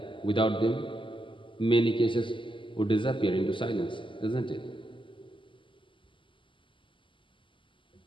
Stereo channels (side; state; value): right; late; 0.25 ms